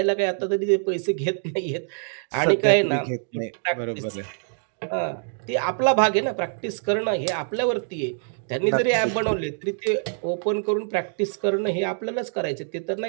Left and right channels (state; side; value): silent; left; digital silence